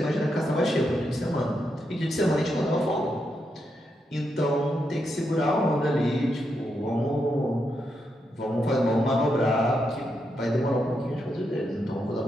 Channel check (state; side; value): normal; both; correlation 0.83